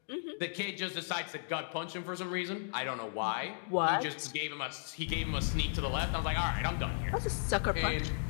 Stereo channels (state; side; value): silent; right; digital silence